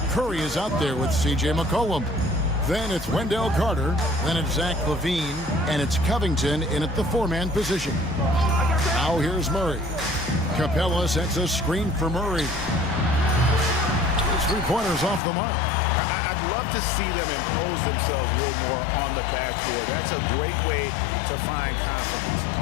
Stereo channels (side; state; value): right; drops out; at 15.2 s